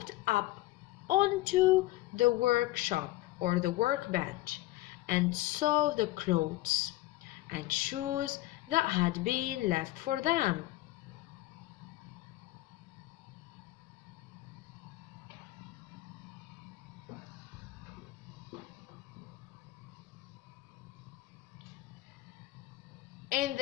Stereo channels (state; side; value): quieter; right; 17.6 dB